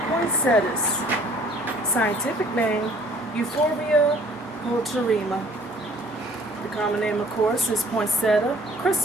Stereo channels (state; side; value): normal; both; correlation 0.55